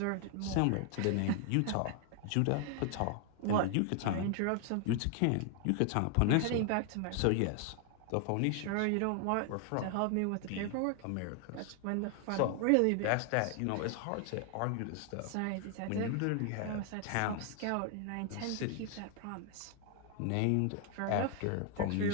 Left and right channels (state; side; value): different; both; correlation 0.00